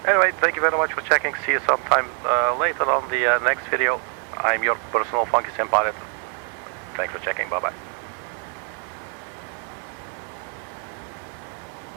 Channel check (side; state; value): left; quieter; 39.7 dB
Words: Anyway, thank you very much for checking. See you sometime later on the next video. I'm your personal Funky Sim Pilot. Thanks for checking. Bye bye.